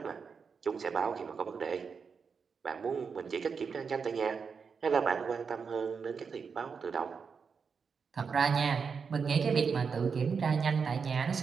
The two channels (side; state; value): left; quieter; 5.7 dB